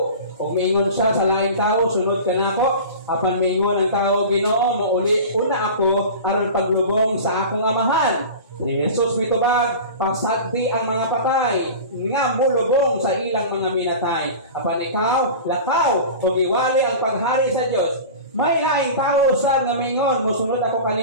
Kung mingon siya sa laing tao, sunod ka na ako. Apan mingon ang tao, Ginoo, mauli una ako aron paglubong sa akong amahan. Si Jesus mitubag, pasagdi ang mga patay, nga mulubong sa ilang mga minatay. Apan ikaw, lakaw, o iwali ang paghari sa Diyos. May laing tao sa ngamingon, musunod ako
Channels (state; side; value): inverted; both; correlation -0.34